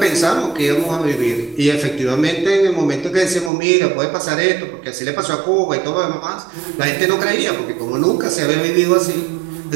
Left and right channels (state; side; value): drops out; left; at 3.5 s